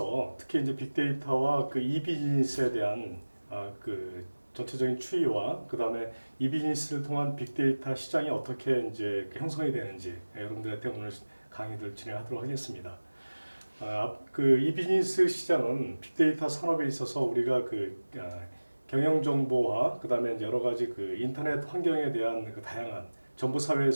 특히 이제 빅데이터와 그 이비즈니스에 대한 그 전체적인 추이와 그 다음에 이비즈니스를 통한 빅데이터 시장이 어떻게 이제 그 형성이 되는지 여러분들한테 오늘 강의를 진행하도록 하겠습니다. 그 이비즈니스 시장은 빅데이터 산업에 있어서 우리가 경영 정보와 그 다음에 여러 가지 그 인터넷 환경에 대한 그 다양한 정보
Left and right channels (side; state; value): both; inverted; correlation -1.00